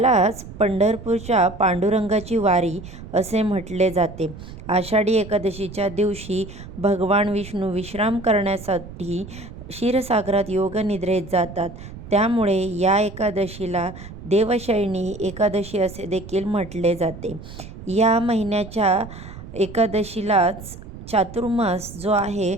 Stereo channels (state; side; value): noise; right; rumble, 14 dB below the sound